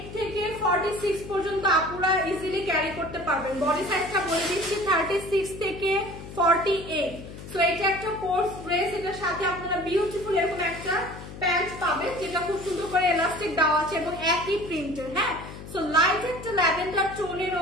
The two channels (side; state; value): left; noise; hum, 13 dB below the sound